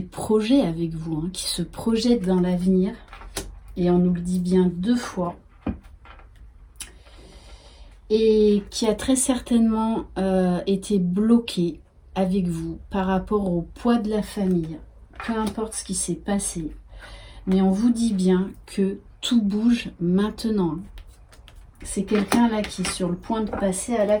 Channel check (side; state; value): both; identical; correlation 1.00